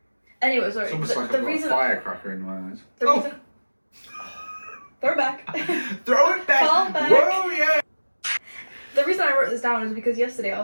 Anyway, sorry. It's almost like I've got a firecracker in my eyes. Reason... Throw it back. Throw it back. Fall back. Whoa, yeah. The reason I wrote this down is because yesterday I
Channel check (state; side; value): inverted; both; correlation -1.00